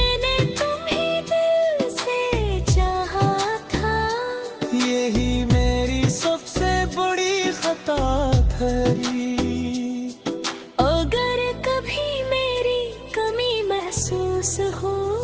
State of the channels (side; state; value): both; identical; correlation 1.00